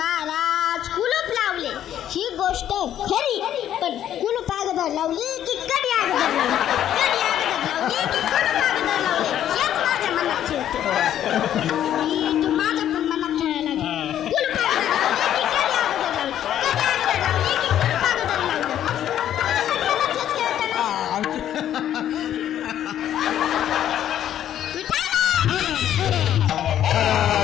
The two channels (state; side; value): quieter; right; 11.0 dB